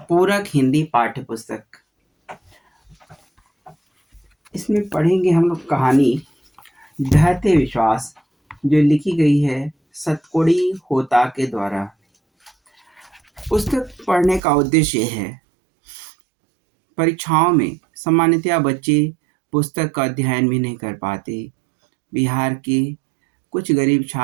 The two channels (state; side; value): drops out; left; at 14.4 s